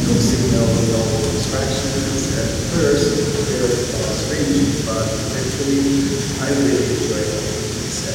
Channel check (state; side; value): identical; both; correlation 1.00